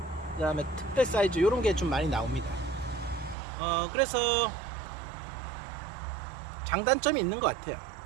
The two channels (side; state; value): left; drops out; at 3.4 s